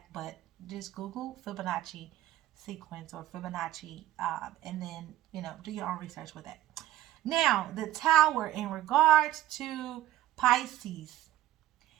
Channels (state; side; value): quieter; left; 14.2 dB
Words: but just Google Fibonacci sequence or Fibonacci, and then, do your own research with that. Now, the Tower, in regards to Pisces,